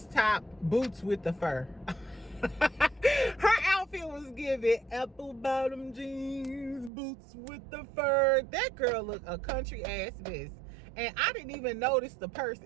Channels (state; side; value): drops out; left; at 6.9 s